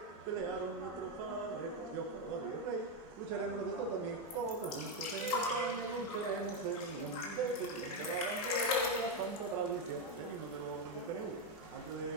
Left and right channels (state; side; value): normal; both; correlation 0.06